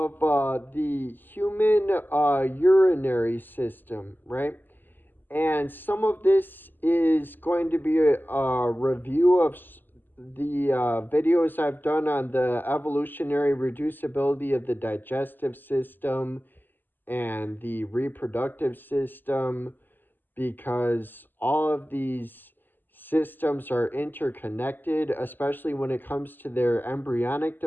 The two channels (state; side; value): late; right; 0.090 ms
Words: the human urinary system, right? And some of this is going to be a review of the videos I've done on the evolutionary reducibility of the digestive system and the reproductive system, because all of these systems are interconnected, especially when it comes to their embryonic